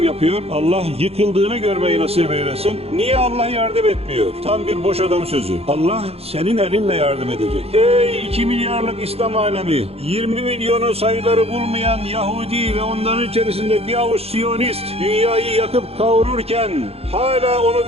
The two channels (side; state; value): left; late; 0.29 ms